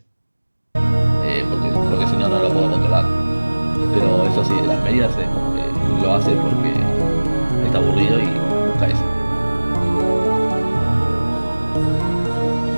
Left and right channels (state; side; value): inverted; both; correlation -1.00